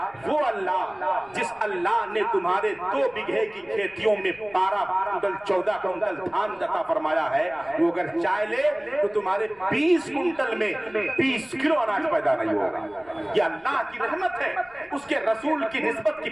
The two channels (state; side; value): noise; left; rumble, 30 dB below the sound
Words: وہ اللہ جس اللہ نے تمہارے 2 بیگھے کی کھیتیوں میں 12 کنٹل 14 کنٹل دھان عطا فرمایا ہے، وہ اگر چاہ لے تو تمہارے 20 کنٹل میں 20 کلو اناج پیدا نہیں ہوگا۔ یہ اللہ کی رحمت ہے، اس کے رسول کی نسبت کی